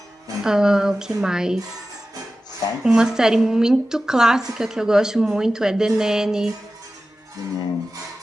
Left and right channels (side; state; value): both; normal; correlation 0.95